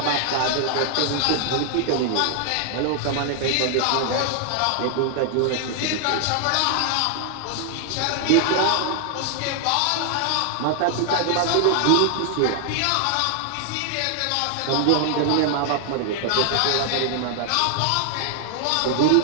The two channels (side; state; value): both; different; correlation 0.00